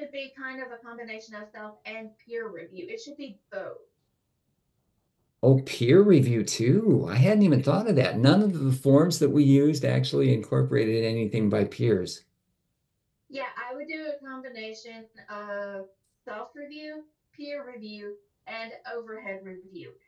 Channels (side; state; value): both; identical; correlation 1.00